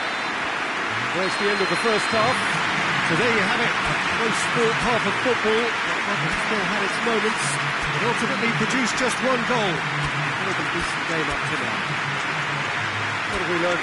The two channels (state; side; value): identical; both; correlation 1.00